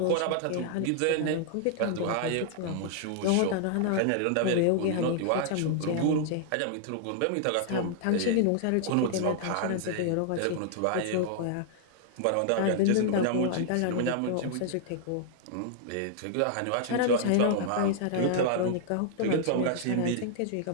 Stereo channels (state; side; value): different; both; correlation -0.01